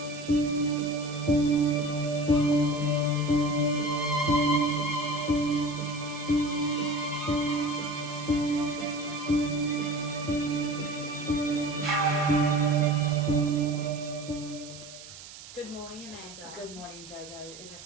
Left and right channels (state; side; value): noise; right; hiss, 16 dB below the sound